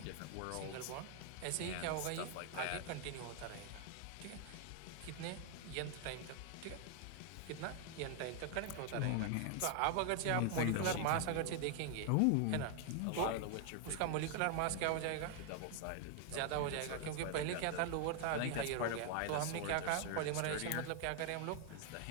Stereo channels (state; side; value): different; both; correlation 0.00